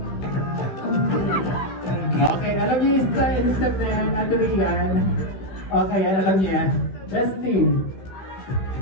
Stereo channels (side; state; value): right; late; 15 ms